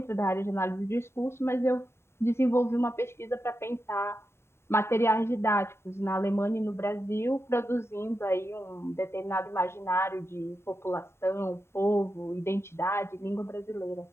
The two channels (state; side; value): late; right; 0.12 ms